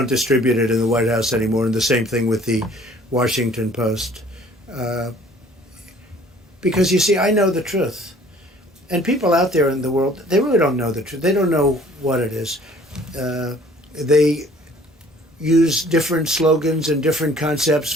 distribute it in the White House anymore, and the same thing with the Washington Post. Because you see, I know the truth, and people out there in the world, they really don't know the truth. They don't know what it is. They use different slogans and different concepts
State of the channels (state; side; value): normal; both; correlation 0.54